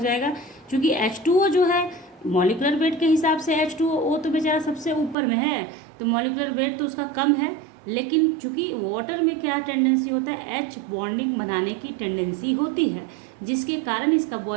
क्योंकि H2O जो है मॉलिक्यूलर वेट के हिसाब से H2O तो बेचारा सबसे ऊपर में है, तो मॉलिक्यूलर वेट तो उसका कम है, लेकिन चूंकि वाटर में क्या टेंडेंसी होता है, H बॉन्डिंग बनाने की टेंडेंसी होती है, जिसके कारण इसका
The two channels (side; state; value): left; drops out; at 5.2 s